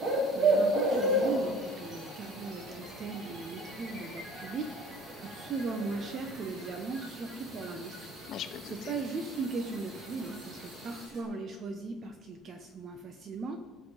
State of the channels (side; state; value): both; normal; correlation 0.50